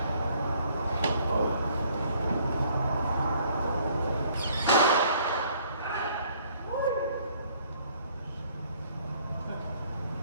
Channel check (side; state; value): both; inverted; correlation -0.61